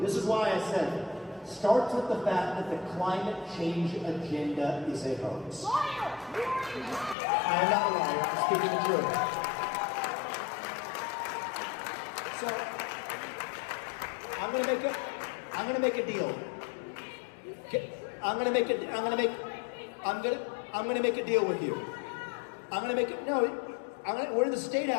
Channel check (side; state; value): right; drops out; at 7.2 s